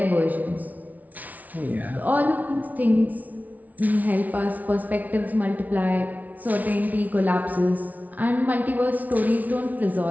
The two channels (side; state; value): left; late; 0.075 ms